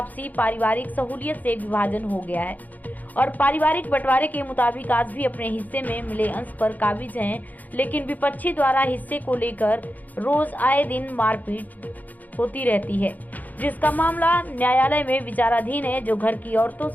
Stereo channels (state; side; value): late; right; 0.081 ms